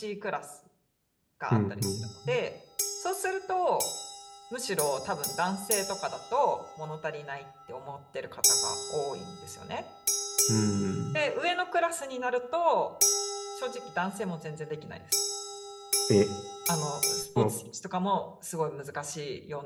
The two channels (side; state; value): both; identical; correlation 1.00